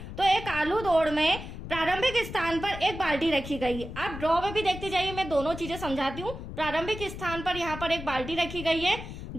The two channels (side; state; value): left; noise; rumble, 10 dB below the sound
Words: तो एक आलू दौड़ में प्रारंभिक स्थान पर एक बाल्टी रखी गई है। आप ड्रॉ में भी देखते जाइए, मैं दोनों चीजें समझाती हूँ। प्रारंभिक स्थान पर यहाँ पर एक बाल्टी रखी गई है